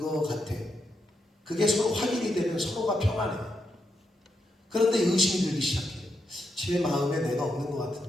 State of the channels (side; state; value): both; normal; correlation 0.83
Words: 같아. 그게 서로 확인이 되면 서로가 평안해요. 그런데 의심이 들기 시작해요. 제 마음에 내가 없는 것